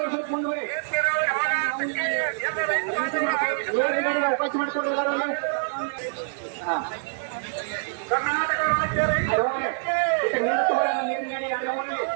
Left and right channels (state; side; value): silent; left; digital silence